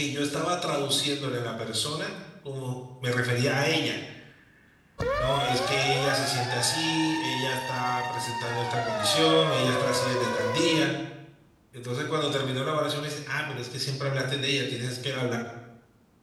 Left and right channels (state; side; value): identical; both; correlation 1.00